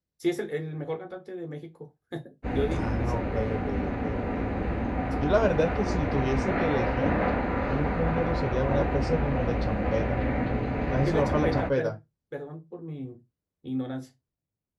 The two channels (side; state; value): both; identical; correlation 1.00